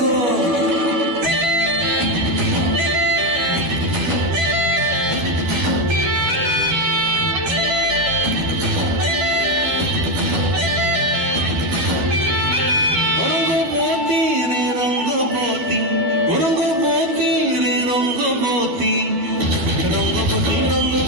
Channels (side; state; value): left; late; 12 ms